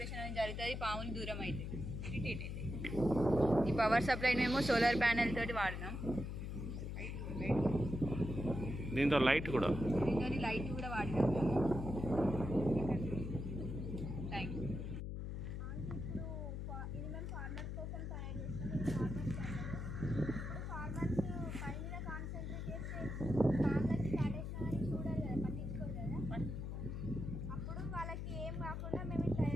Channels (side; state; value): left; noise; hum, 4 dB below the sound